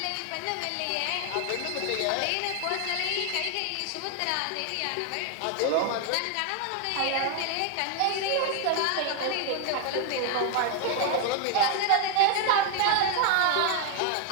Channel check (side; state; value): both; different; correlation 0.00